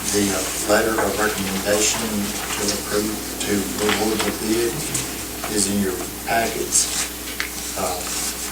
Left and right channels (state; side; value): identical; both; correlation 1.00